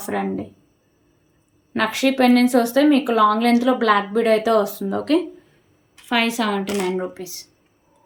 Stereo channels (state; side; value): identical; both; correlation 1.00